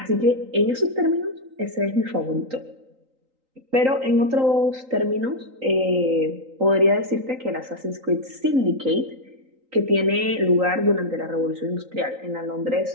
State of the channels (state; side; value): late; left; 3.8 ms